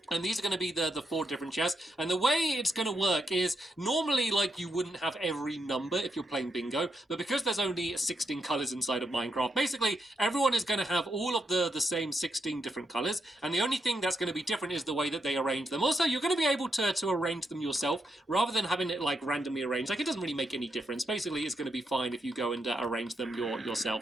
And these are going to be the 4 different chests. And the way it's going to work is normally, like, you wouldn't have every number if you're playing bingo. But because there's only 16 colors inside of Minecraft, basically, everyone is going to have all of the same 16 different colors. And the only thing that's going to be different is the way that they arrange them. Also, you're going to be able to arrange them yourself rather than having it, like, randomly arranged. Like, it doesn't really make any difference. Basically, it's going to be fine if you go and arrange them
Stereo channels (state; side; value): normal; both; correlation 0.82